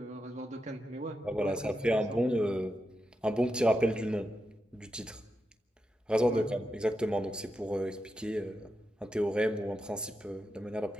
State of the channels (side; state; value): both; normal; correlation 0.87